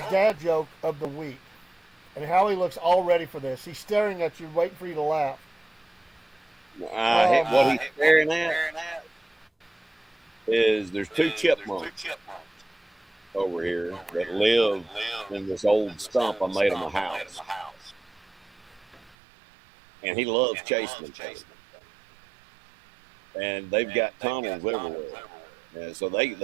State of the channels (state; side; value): drops out; left; at 19.2 s